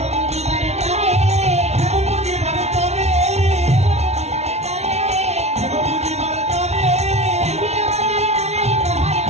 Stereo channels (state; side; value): late; left; 0.31 ms